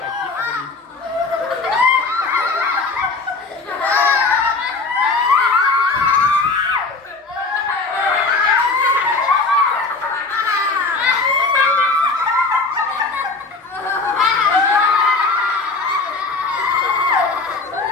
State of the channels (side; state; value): right; quieter; 3.8 dB